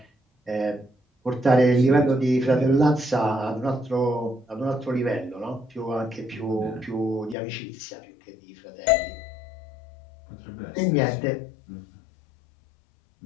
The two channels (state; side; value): drops out; right; at 7.4 s